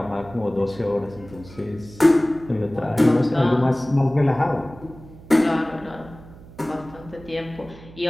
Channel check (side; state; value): right; noise; hum, 19 dB below the sound